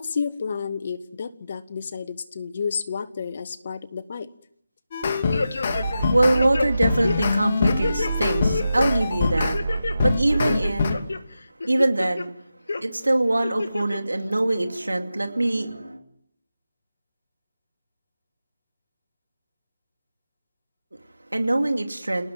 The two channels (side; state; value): both; inverted; correlation -0.91